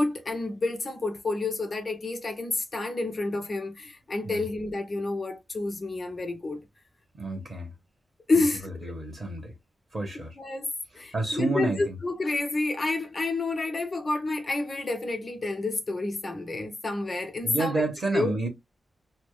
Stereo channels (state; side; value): normal; both; correlation 0.88